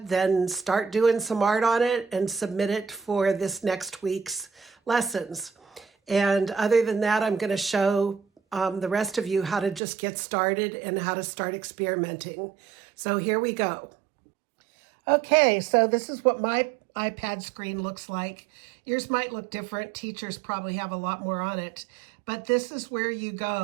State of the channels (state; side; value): drops out; left; at 9.8 s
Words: then start doing some art on it and submit it for this next week's lessons. And other than that, I'm going to show the rest of you how to just get started and how to start experimenting. So here we go. Okay, so this is what my iPad screen looks like. Yours might look different. Teachers probably have a lot more on it. But this is where you